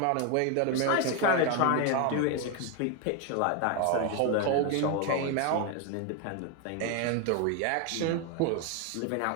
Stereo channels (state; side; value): different; both; correlation 0.01